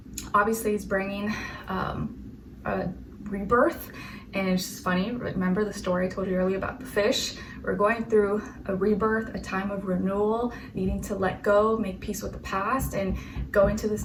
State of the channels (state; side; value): identical; both; correlation 1.00